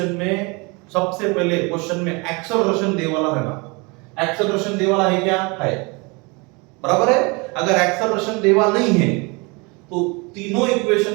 में सबसे पहले क्वेश्चन में एक्सेलरेशन दे वाला है ना, एक्सेलरेशन दे वाला है क्या? है, बराबर है। अगर एक्सेलरेशन दे वाला नहीं है तो तीनों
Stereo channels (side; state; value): left; quieter; 28.5 dB